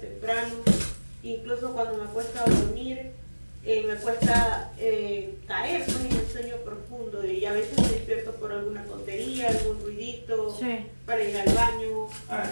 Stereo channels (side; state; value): both; inverted; correlation -1.00